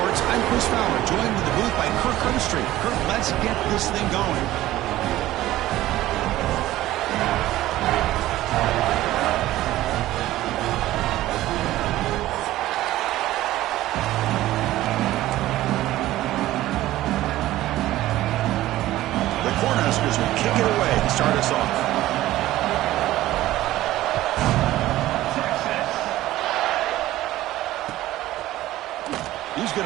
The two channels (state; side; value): quieter; left; 15.4 dB